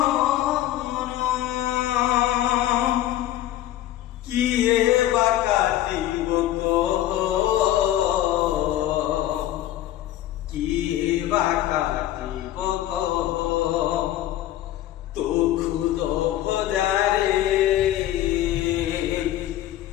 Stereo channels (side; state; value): right; quieter; 13.5 dB